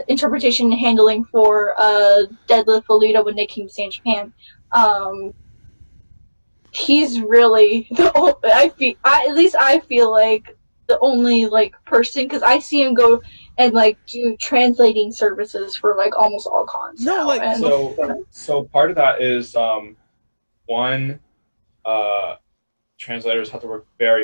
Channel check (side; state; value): both; inverted; correlation -1.00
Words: interpretation and handling for Deadlift Alita when they came to stay in Japan. He's really I feel like the only person, because I see him go and do translating services for almost all cons. No, so part of that is one. Translators have to work